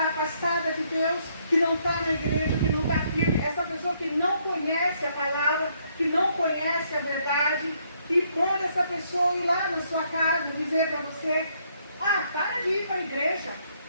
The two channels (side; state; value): both; inverted; correlation -0.71